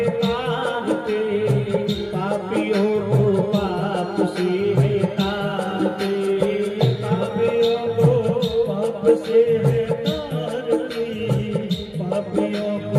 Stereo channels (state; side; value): identical; both; correlation 1.00